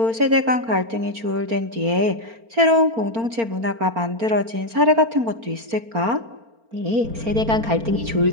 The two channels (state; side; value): late; left; 4.4 ms